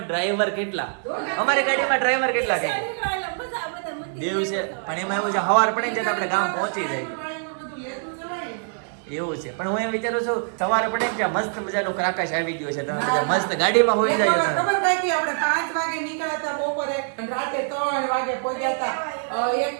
ડ્રાઈવર કેટલા? અમારી ગાડીમાં ડ્રાઈવર કેટલા કે દિવસે? પણ એમાં એવું છે સવાર પડે ને આપણે ગામ પહોંચી જાય એવું છે. પણ હું એમ વિચારું છું સવારે પડે ને મસ્ત મજાનું ક્રાકાશ આવી ગયો છે, તમે બધા મસ્ત ગાડીમાં હોઈ જાય. ખબર થાય કે આપણે 5 વાગે નીકળ્યા હતા બપોરે, રાતે 3 વાગે પહોંચ્યા હતા. એક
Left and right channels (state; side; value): silent; left; digital silence